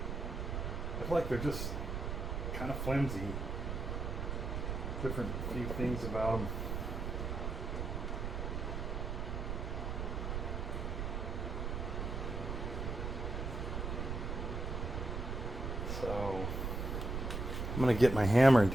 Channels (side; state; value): right; noise; rumble, 2 dB below the sound